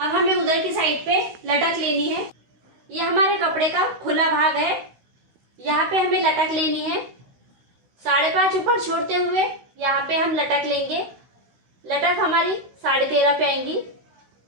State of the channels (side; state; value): left; late; 16 ms